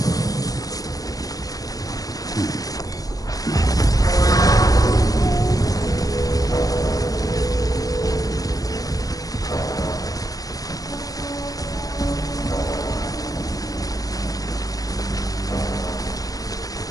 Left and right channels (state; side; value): late; right; 0.18 ms